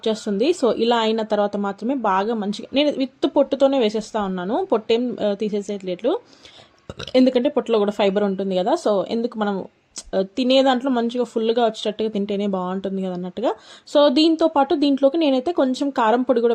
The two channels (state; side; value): identical; both; correlation 1.00